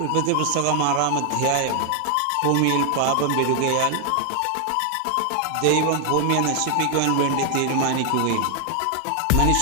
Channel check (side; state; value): both; different; correlation 0.00